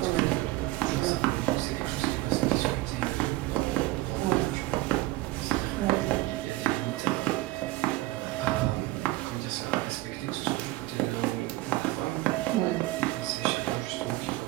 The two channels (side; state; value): left; quieter; 18.3 dB